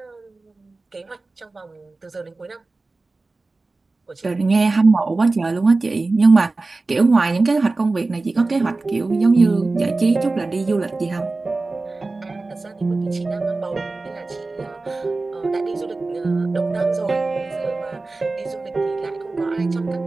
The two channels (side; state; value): left; quieter; 3.4 dB